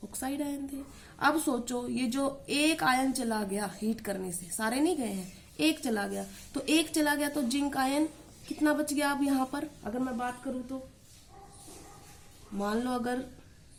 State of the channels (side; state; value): both; identical; correlation 1.00